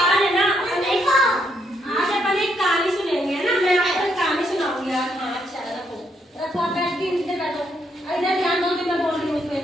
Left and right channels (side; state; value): both; normal; correlation 0.75